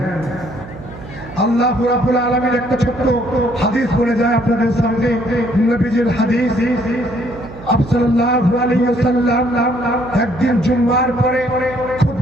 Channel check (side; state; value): right; noise; hum, 15 dB below the sound